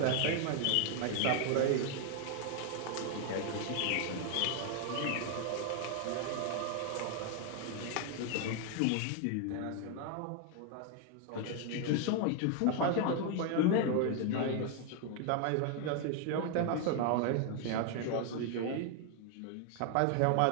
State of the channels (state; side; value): different; both; correlation 0.00